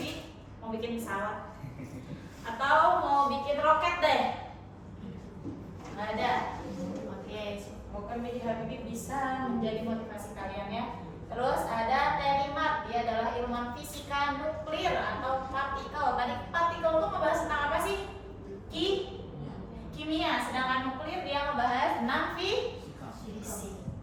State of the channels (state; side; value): identical; both; correlation 1.00